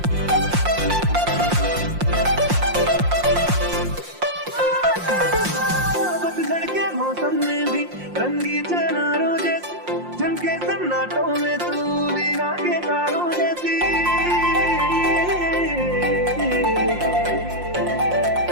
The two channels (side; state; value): left; late; 5.6 ms